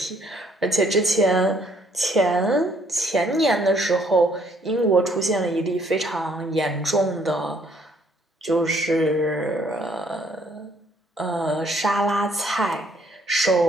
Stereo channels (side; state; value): both; normal; correlation 0.65